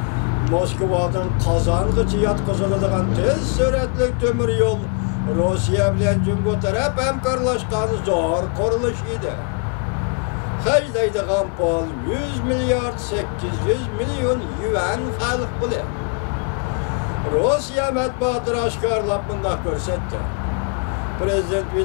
Moskova'dan Kazangıcı yatkızıldıgan tez süratlik tömür yol Rusya bilen Cumhur taraf hemkarlaşkan zor kuruluş idi. Haclaydıgan pul 100 milyar 800 milyon yuan halık bile. Rusya matbuatı aşkarlap bunda görsetti. Prezident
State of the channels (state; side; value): quieter; right; 35.9 dB